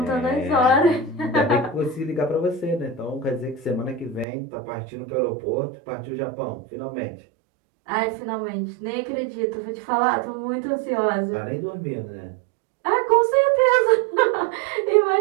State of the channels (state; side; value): drops out; left; at 4.2 s